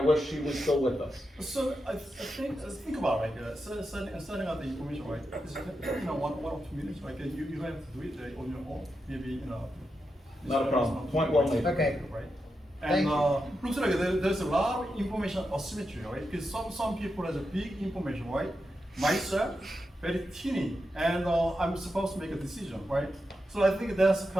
she was still with us. So I think about like setting out the information, right? It's, 1 or 2 minutes. Like you don't have to do it on your own. Maybe Not a problem. Point well made. Okay. Right. Thank And you. looks like there's a lot of information asymmetry, right? Because some people has a big information, right? Myself, very teeny, and I'm supposed to make a decision, right? So I think that's the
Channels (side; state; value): both; normal; correlation 0.87